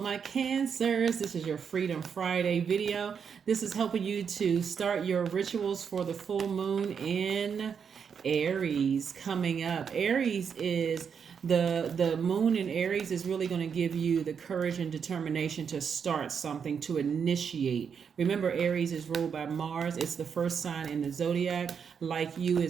my Cancers. This is your Freedom Friday video. This is helping you to start your rituals for the full moon in Aries coming up. Aries is the moon in Aries is really going to give you the courage and determination to start something, to initiate. Remember, Aries is ruled by Mars. It's the first sign in the Zodiac. Like you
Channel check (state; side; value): quieter; left; 6.8 dB